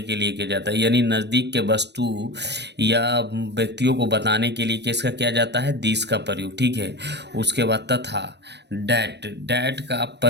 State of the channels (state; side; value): late; left; 0.50 ms